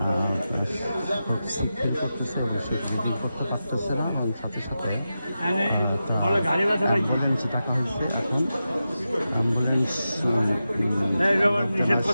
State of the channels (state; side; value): inverted; both; correlation -0.91